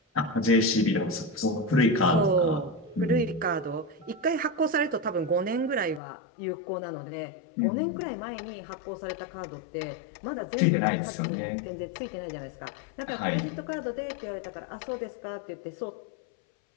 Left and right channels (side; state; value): right; drops out; at 6.0 s